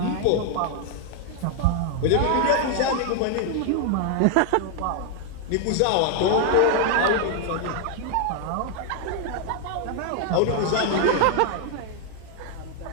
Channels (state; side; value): different; both; correlation 0.00